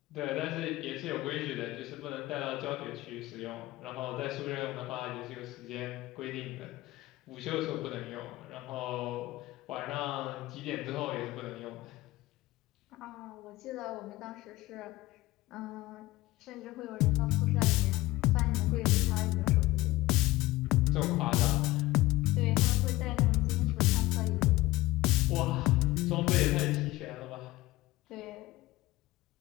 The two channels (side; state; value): right; quieter; 18.6 dB